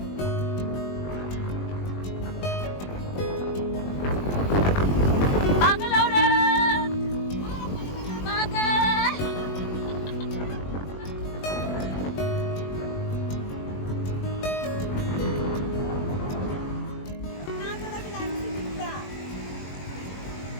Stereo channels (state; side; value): late; right; 21 ms